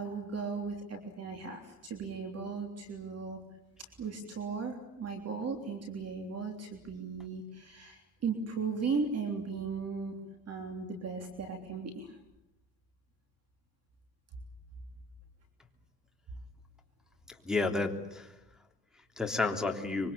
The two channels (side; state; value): both; normal; correlation 0.48